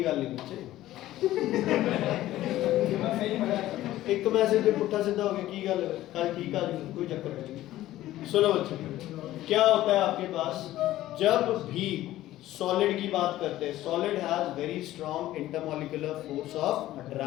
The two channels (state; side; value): quieter; right; 14.8 dB